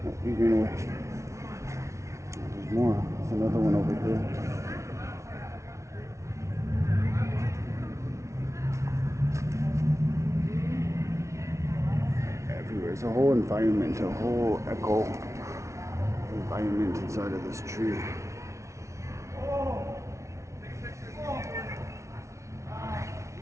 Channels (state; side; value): late; left; 0.14 ms